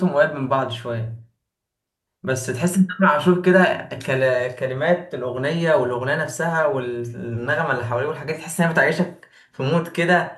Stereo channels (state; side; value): identical; both; correlation 1.00